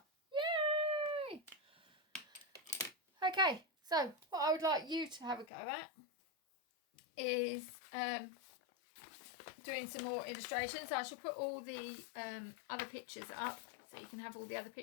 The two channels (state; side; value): drops out; right; at 5.5 s